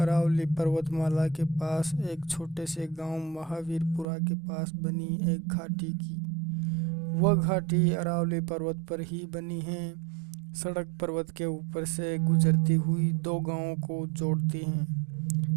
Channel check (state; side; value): drops out; left; at 4.0 s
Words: अरावली पर्वतमाला के पास एक छोटे से गांव महावीरपुरा के पास बनी एक घाटी की। वह घाटी अरावली पर्वत पर ही बनी है। सड़क पर्वत के ऊपर से गुजरती हुई दो गांवों को जोड़ती